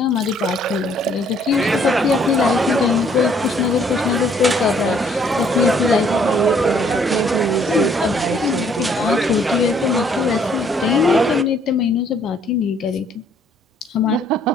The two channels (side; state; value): both; normal; correlation 0.64